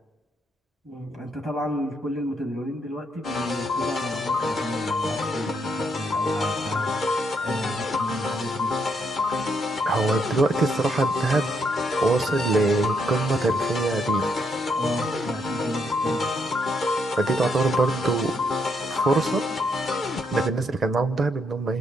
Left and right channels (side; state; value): both; normal; correlation 0.75